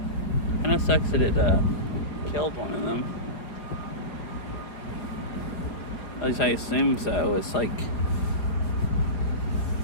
Kinda sucks that it killed one of them. At least I assume so. It's like,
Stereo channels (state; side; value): late; right; 4.9 ms